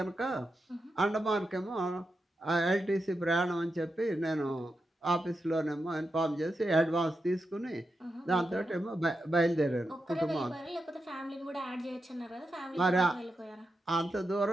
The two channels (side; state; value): both; normal; correlation 0.88